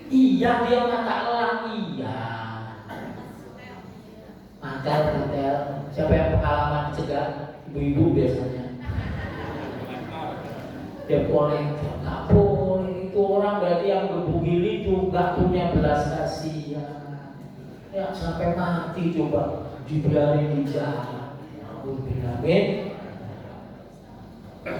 Iya, dia mata elang, iya. Mantel. Siapa yang pengalaman cegah? Ibu-ibu biasanya. Dia boleh, nggak boleh. Itu orang berarti yang gebugil itu nggak punya belas kasihan. Ya sampai mati coba dibiarin di jalan. Amin.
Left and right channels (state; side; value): identical; both; correlation 1.00